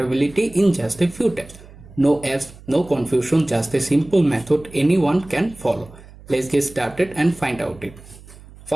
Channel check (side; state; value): right; noise; hum, 20 dB below the sound